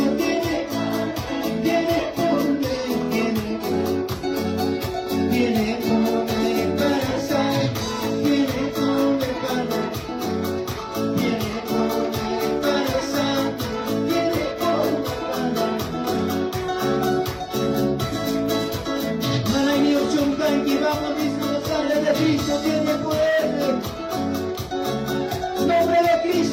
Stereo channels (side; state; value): both; identical; correlation 1.00